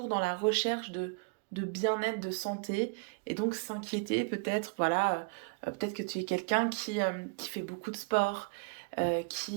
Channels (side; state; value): left; quieter; 35.1 dB